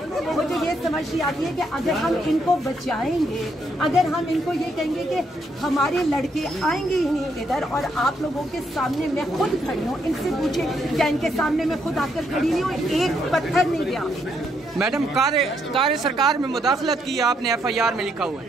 मुझे ये समझ नहीं आती है कि अगर हम इनको बचाएंगे, अगर हम इनको ये कहेंगे कि हमारे लड़के आएंगे ही नहीं इधर, और आप लोगों के सामने मैं खुद खड़ी हूँ, इनसे पूछे क्या इनके सामने मैं खुद आकर खड़ी नहीं हूँ, एक पत्थर नहीं गया। मैडम कार्य सरकार में मुदाखलत की आपने FIR में लिखा हुआ है।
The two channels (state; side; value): normal; both; correlation 0.75